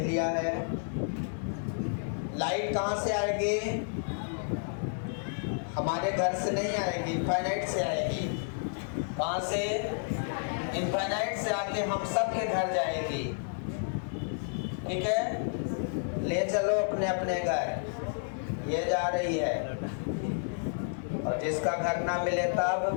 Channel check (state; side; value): silent; right; digital silence